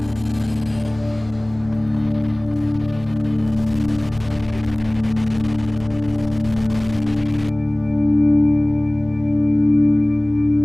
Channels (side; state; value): left; noise; hum, 20 dB below the sound